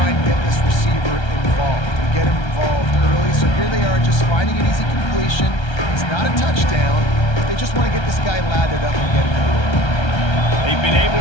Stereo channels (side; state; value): right; late; 1.3 ms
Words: and get this receiver involved. and get him involved early. So here they are just finding an easy completion. It's not a touchdown, but they just want to get this guy lathered up and get him into it. They've been able